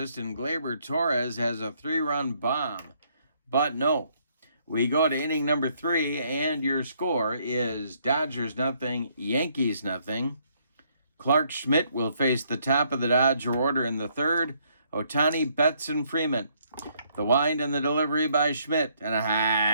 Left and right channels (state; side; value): inverted; both; correlation -0.69